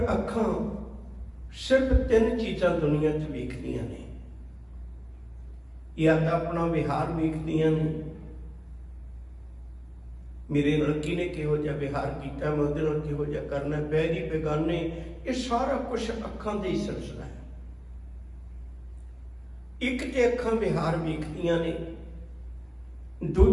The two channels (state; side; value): identical; both; correlation 1.00